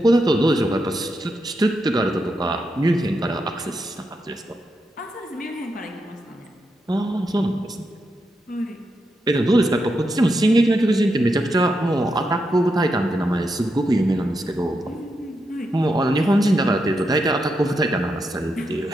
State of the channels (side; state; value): both; normal; correlation 0.84